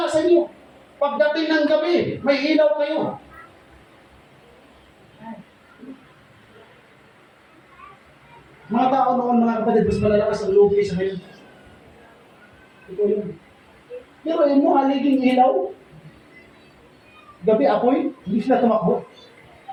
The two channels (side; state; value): both; identical; correlation 1.00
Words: sa inyo. Pagdating ng gabi, may ilaw kayo. Mga tao noon, mga kapatid, mas malalakas ang loob sa ngayon. Ito yun. Pero yun mo, haliging ilaw. Gabi apoy, hindi sila tumakbo.